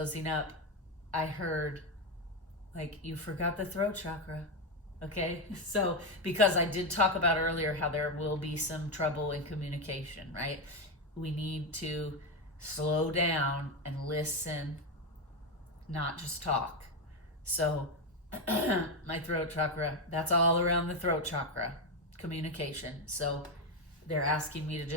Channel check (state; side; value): normal; both; correlation 0.09